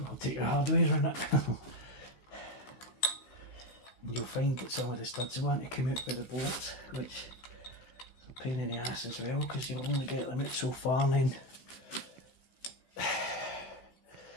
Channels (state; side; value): late; right; 16 ms